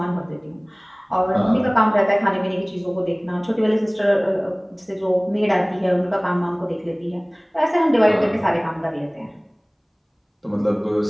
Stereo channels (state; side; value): identical; both; correlation 1.00